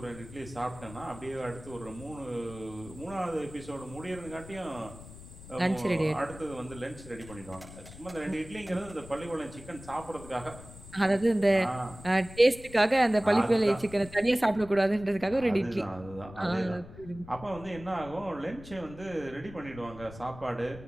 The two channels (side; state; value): left; noise; rumble, 16 dB below the sound